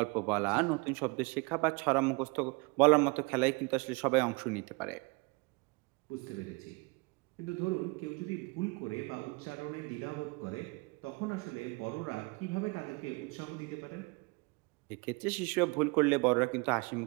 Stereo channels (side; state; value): left; quieter; 28.3 dB